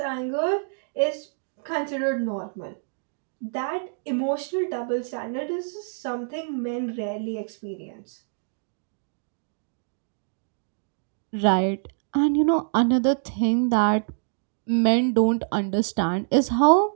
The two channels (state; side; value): silent; left; digital silence